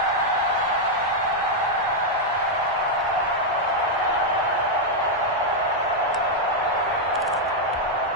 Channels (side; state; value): both; normal; correlation -0.02